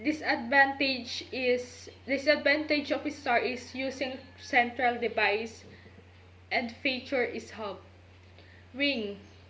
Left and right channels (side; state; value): both; identical; correlation 1.00